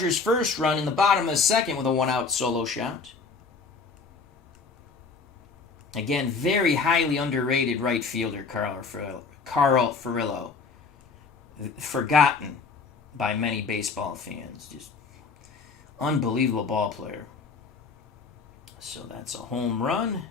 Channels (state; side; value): quieter; right; 4.7 dB